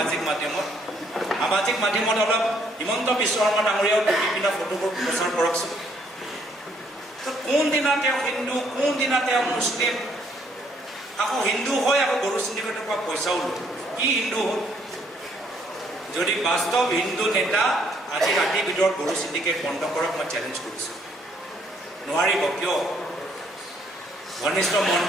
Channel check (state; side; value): normal; both; correlation 0.68